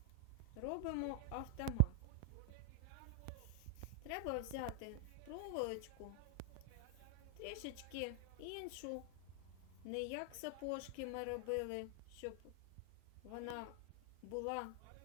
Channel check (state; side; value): different; both; correlation 0.00